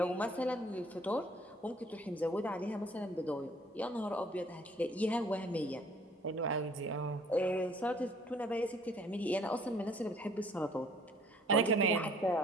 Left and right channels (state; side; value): normal; both; correlation 0.58